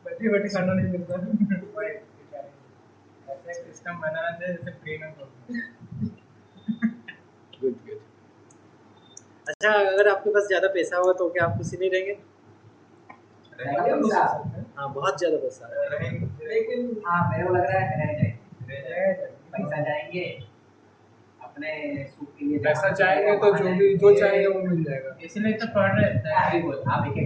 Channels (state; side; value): identical; both; correlation 1.00